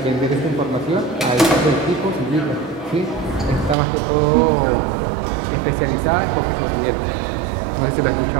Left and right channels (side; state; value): left; drops out; at 3.8 s